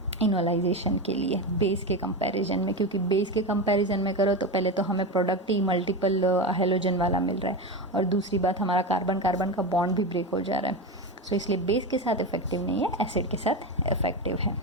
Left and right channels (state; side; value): normal; both; correlation 0.18